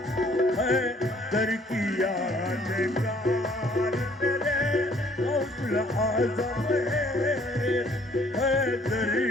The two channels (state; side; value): normal; both; correlation 0.60